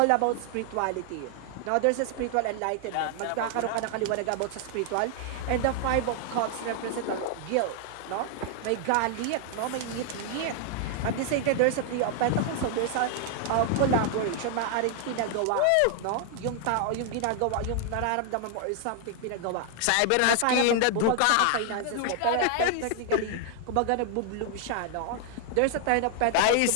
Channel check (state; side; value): different; both; correlation 0.00